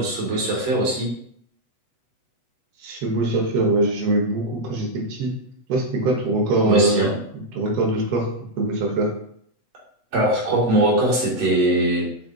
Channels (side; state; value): left; late; 8.1 ms